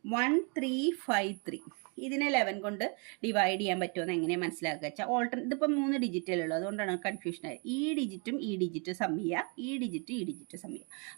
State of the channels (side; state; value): left; quieter; 35.7 dB